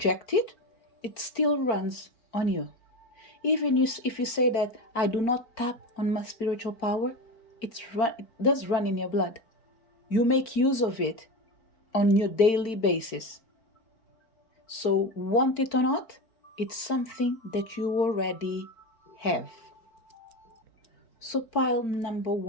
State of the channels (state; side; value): late; right; 4.4 ms